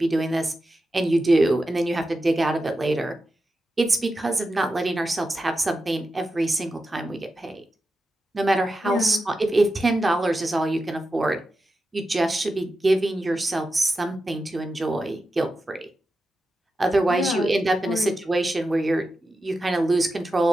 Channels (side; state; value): both; normal; correlation 0.91